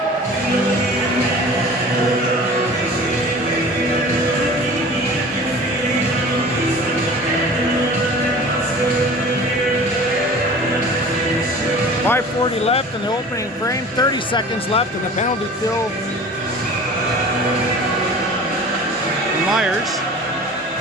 .540 left in the opening frame. 30 seconds left in the penalty kill. Myers.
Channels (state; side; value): normal; both; correlation 0.41